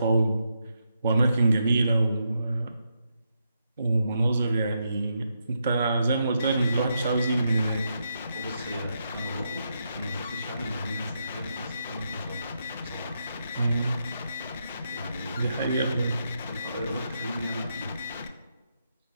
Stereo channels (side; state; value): both; inverted; correlation -0.82